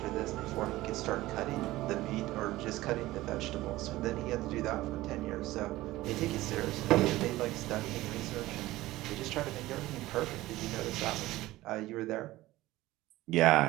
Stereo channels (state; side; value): quieter; left; 17.4 dB